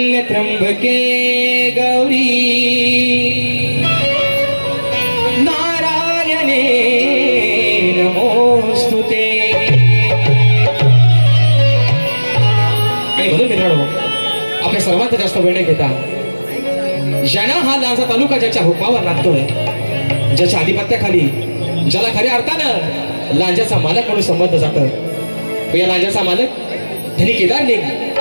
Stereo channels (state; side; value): inverted; both; correlation -1.00